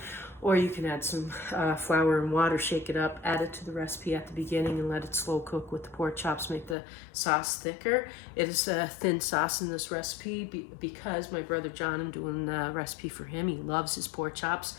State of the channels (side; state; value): right; drops out; at 6.8 s